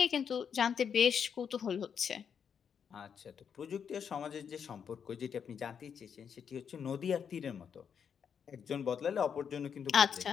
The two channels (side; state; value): right; quieter; 7.3 dB